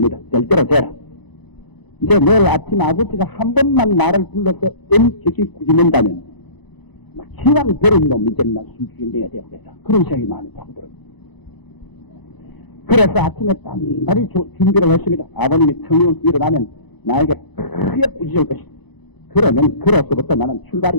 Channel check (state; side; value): late; right; 1.0 ms